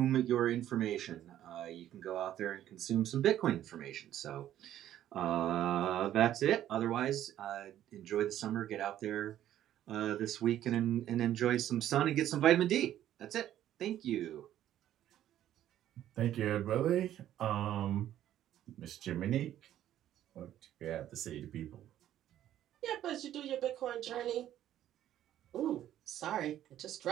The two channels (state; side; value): quieter; left; 12.0 dB